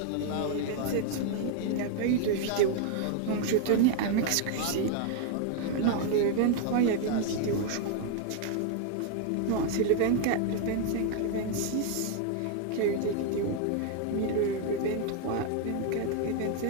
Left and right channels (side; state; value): both; different; correlation 0.00